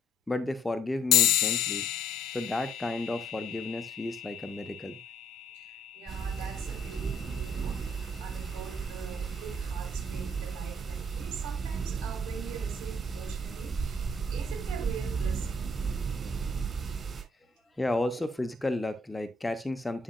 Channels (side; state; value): both; normal; correlation 0.64